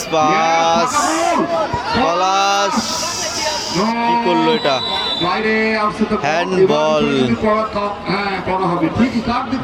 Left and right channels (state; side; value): identical; both; correlation 1.00